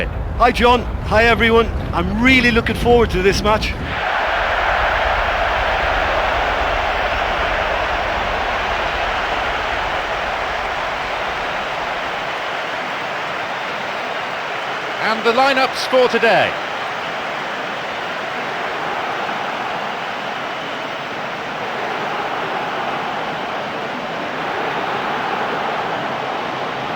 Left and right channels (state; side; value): identical; both; correlation 1.00